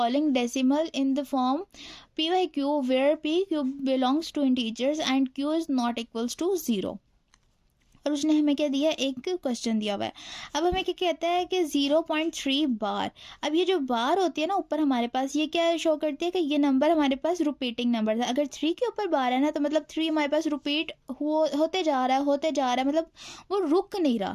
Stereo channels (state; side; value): identical; both; correlation 1.00